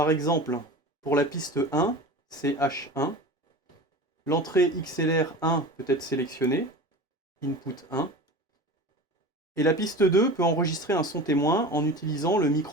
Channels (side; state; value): both; normal; correlation 0.34